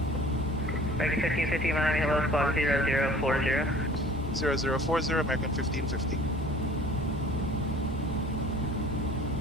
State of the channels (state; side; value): normal; both; correlation 0.48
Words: American 1550, Miami, hello, squawk 0040. 0040, American 1550.